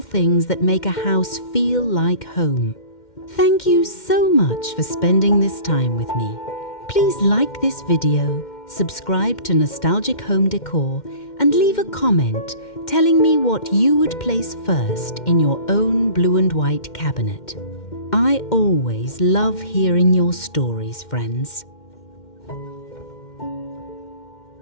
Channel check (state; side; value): late; right; 2.1 ms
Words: things that make a house feel like home. Thank you so much for spending this time with me. Please like this video, subscribe to Nostalgic Home Decor, and leave a comment telling me what you would place first in your own blue and white cabinet. I always love hearing your stories, friends.